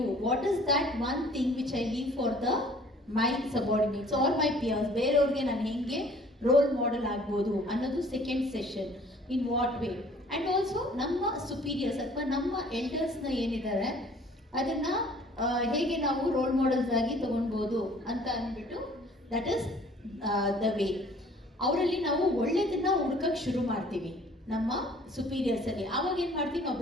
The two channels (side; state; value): both; normal; correlation 0.54